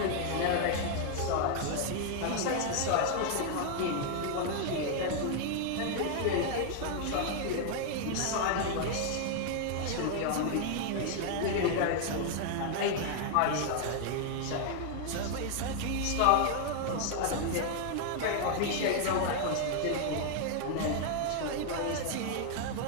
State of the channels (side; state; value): both; different; correlation 0.00